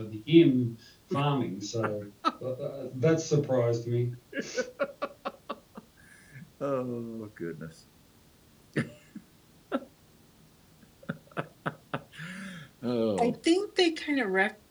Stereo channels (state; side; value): identical; both; correlation 1.00